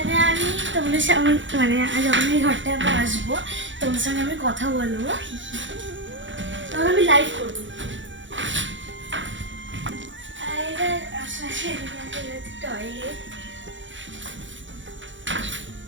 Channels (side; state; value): left; late; 0.55 ms